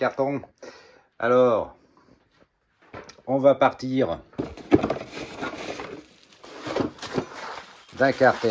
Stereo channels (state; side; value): identical; both; correlation 1.00